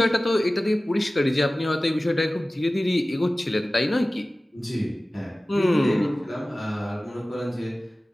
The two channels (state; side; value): normal; both; correlation 0.97